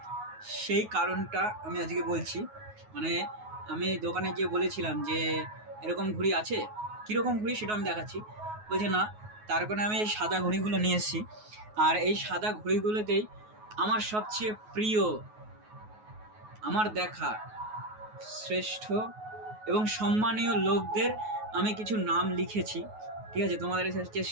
সেই কারণটা আমি আজকে বলছি। মানে আমি দোকানে গিয়ে বলেছিলাম যে এরকম ঘুড়ি আছে, কীরকম ঘুড়ি সেটা আমি দেখাচ্ছি। বলছে না, তার কারণে আমি এই সাদা ঘুড়িগুলো নিয়ে এসেছি। আর এই সাদা ঘুড়িগুলোতেই আমার সবচেয়ে প্রিয়, আমার দেখা শ্রেষ্ঠ এবং সম্মানীয় লোকদের আমি কিছু নাম লিখেছি, ঠিক আছে, তোমাদের সাথে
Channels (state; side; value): late; left; 9.4 ms